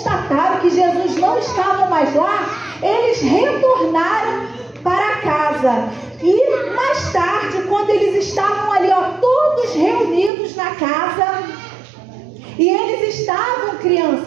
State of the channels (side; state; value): left; drops out; at 10.3 s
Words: que Jesus não estava mais lá, eles retornaram para casa. E mais tarde, quando eles estavam ali, todos reunidos na casa, e eles estavam,